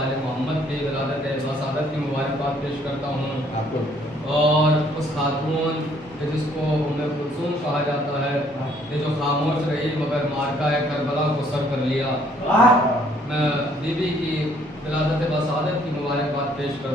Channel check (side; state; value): both; normal; correlation 0.63